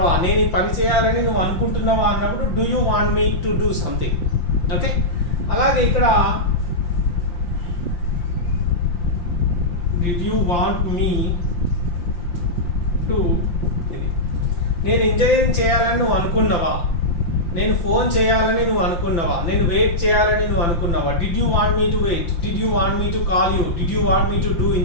నేను ఈ పని చేయాలని నువ్వు అనుకుంటున్నావా అన్నప్పుడు do you want me to do something. Okay, అలాగే ఇక్కడ did you want me to, నేను ఇంజనీరింగ్ చేయాలని నువ్వు అనుకున్నావా? నేను ఫోన్ చేయాలని నువ్వు అనుకున్నావా? నేను వెయిట్ చేయాలని నువ్వు అనుకున్నావా? Did you want me to wait. Did you want me to call you. Did you want me to do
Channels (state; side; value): late; right; 5.7 ms